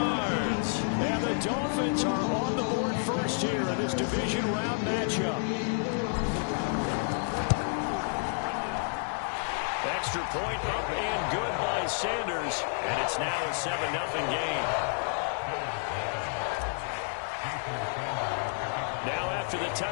And the Dolphins are on the board first here in this division round matchup. Extra point up and good by Sanders. And it's now a 7-0 game. Now after the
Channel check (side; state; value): right; silent; 58 dB below the other